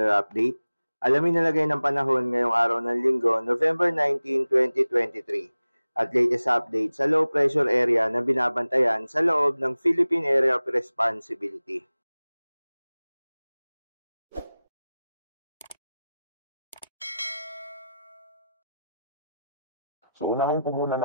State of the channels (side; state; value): both; inverted; correlation -0.95